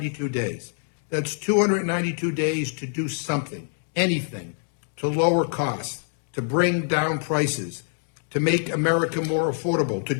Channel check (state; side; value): silent; right; 56 dB below the other